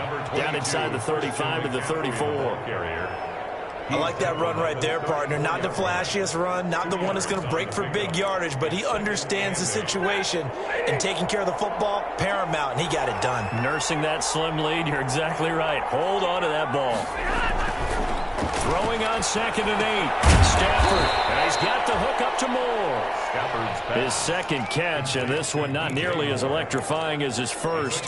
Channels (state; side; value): identical; both; correlation 1.00